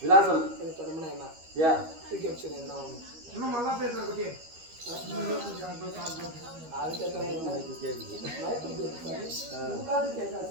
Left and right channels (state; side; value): late; left; 13 ms